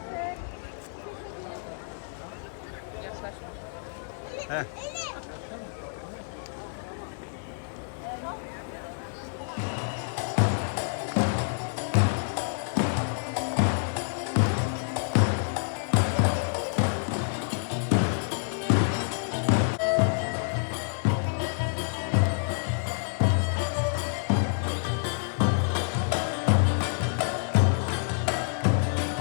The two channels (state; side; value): silent; right; digital silence